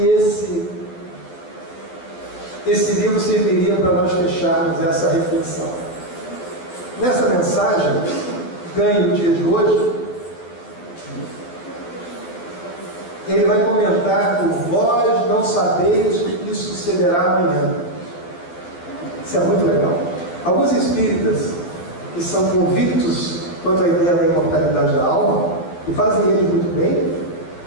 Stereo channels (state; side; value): late; right; 12 ms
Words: esse livro serviria para nós fecharmos essa reflexão. Nessa mensagem, ganhe o dia de hoje, ele vai comentar por vós não sabeis o que sucederá amanhã. Isso é muito legal. Alguns espíritas que são convictos quanto à ideia da imortalidade da alma, e fazem eles muito bem,